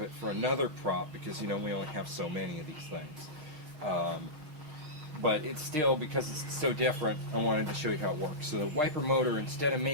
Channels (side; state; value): left; late; 6.6 ms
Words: it for another prop because, we only have so many of these things. But it's still, because it's so different, I wanted to show you how it works. So the wiper motor, instead of